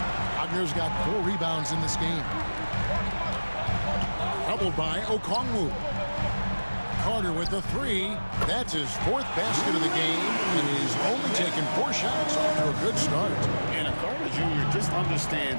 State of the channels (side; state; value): both; inverted; correlation -1.00